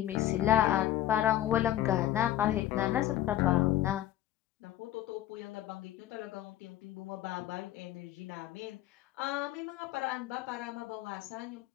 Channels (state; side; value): quieter; right; 13.2 dB